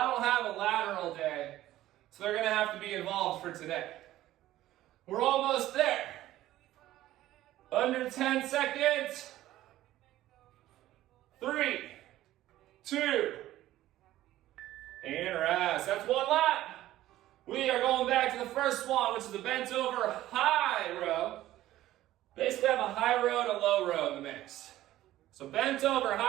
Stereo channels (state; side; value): quieter; left; 14.7 dB